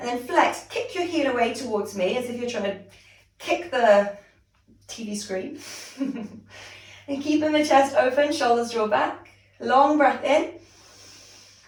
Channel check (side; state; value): both; identical; correlation 1.00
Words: then flex, kick your heel away towards me as if you're trying to kick the TV screen. And keeping the chest open, shoulders draw back. Long breath in.